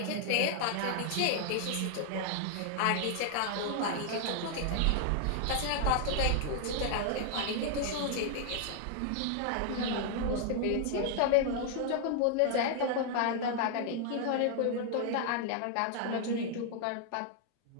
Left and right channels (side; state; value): both; different; correlation 0.00